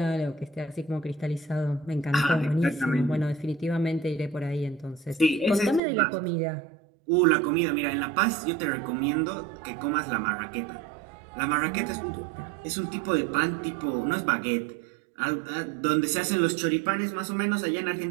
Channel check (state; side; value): drops out; left; at 5.8 s